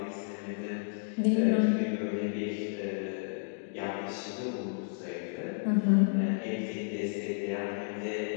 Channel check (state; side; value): silent; right; digital silence